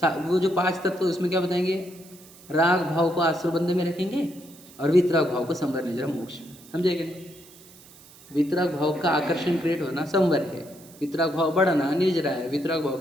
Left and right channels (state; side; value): noise; right; hiss, 22 dB below the sound